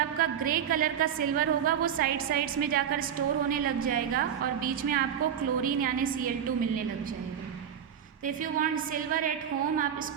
ग्रे कलर का सिल्वर होगा वो साइड्स में जाकर स्टोर होने लग जाएगा और बीच में आपको क्लोरीन यानी Cl2 मिलने लग जाएगा। तो if you want silver at home, आप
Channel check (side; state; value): left; quieter; 8.8 dB